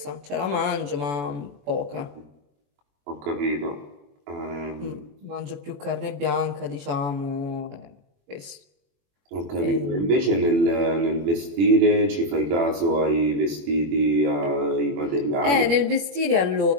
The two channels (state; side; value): late; left; 21 ms